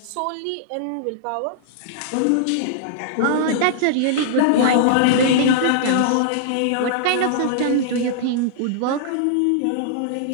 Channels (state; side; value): different; both; correlation -0.01